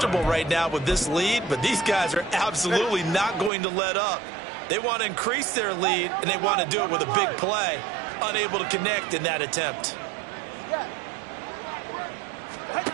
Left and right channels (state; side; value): drops out; left; at 3.5 s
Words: right now with this lead, but these guys are absolutely not going to let up. They want to increase their lead, and they want to do it with a big play. Unable to connect in that attempt.